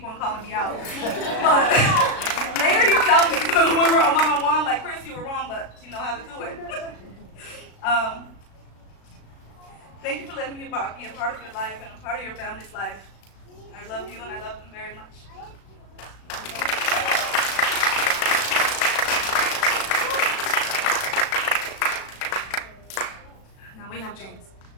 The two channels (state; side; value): late; right; 36 ms